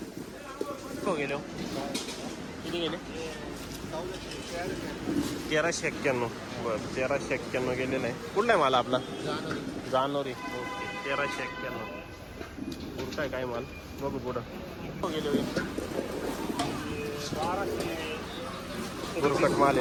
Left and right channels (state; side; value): identical; both; correlation 1.00